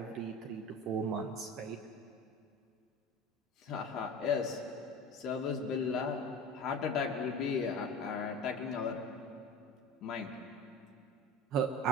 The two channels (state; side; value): normal; both; correlation 0.33